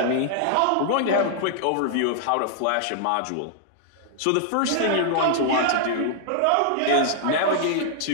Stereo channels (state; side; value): different; both; correlation -0.01